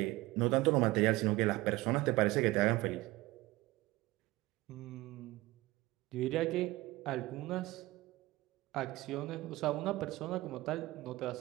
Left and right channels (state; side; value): quieter; left; 19.5 dB